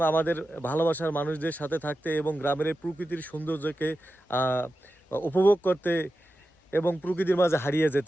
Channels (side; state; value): both; normal; correlation 0.92